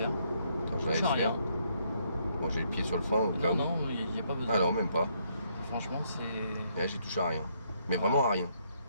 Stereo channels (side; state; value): both; inverted; correlation -0.72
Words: Attends, je la Ça laisse change rien. faire. Moi j'ai le pied sur le frein au cas Non, où. non, il n'y a pas besoin. Ah non même pas. Franchement, c'est... Et là j'ai touché à rien. Mais vraiment à rien.